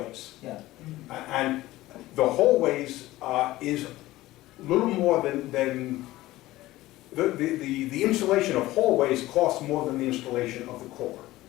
Yeah. And the hallways is a little more than the installation of hallways costs more than the installation of the core,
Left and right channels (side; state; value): right; quieter; 17.1 dB